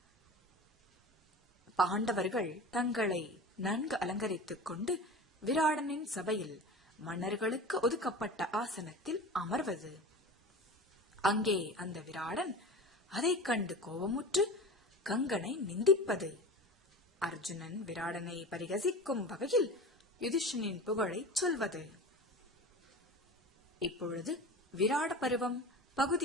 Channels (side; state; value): both; normal; correlation 0.34